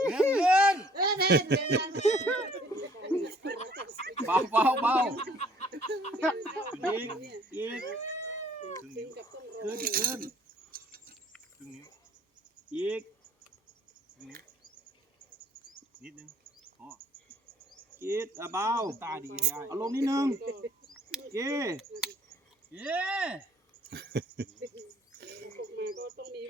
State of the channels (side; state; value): both; normal; correlation 0.58